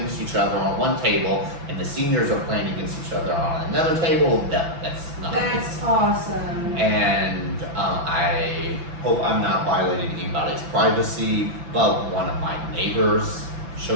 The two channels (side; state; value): left; late; 6.0 ms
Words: each other on one table and the seniors are playing against each other on another table. No, that's not the case. That's awesome. And I hope I'm not violating anybody's privacy, but one of my neighbors